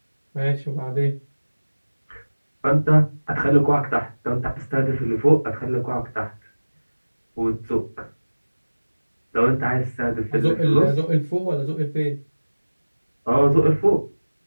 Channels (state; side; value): inverted; both; correlation -1.00